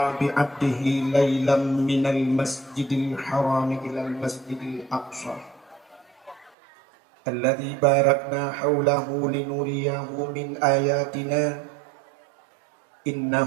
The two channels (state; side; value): drops out; left; at 6.5 s